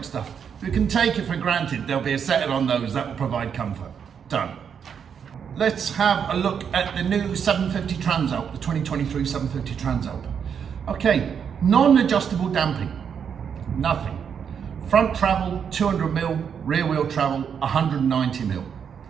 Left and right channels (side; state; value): left; quieter; 7.4 dB